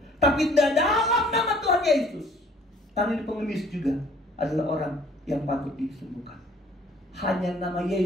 tapi dalam nama Tuhan Yesus. Tapi ini pengemis juga adalah orang yang patut disembuhkan. Hanya nama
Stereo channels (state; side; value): normal; both; correlation 0.56